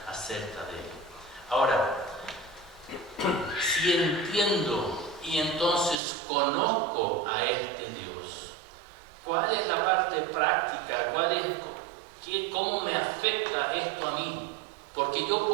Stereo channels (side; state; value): left; drops out; at 6.0 s